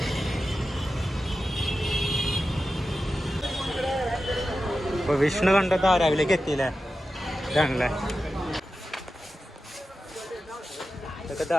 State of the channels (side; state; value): both; normal; correlation 0.92